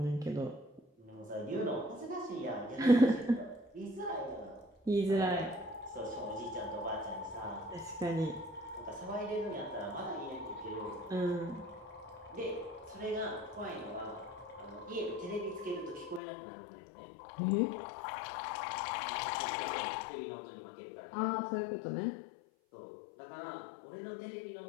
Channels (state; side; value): drops out; right; at 16.2 s